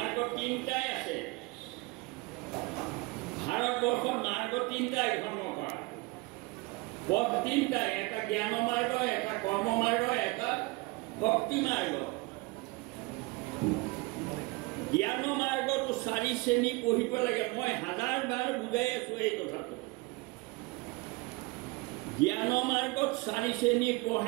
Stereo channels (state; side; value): quieter; left; 24.6 dB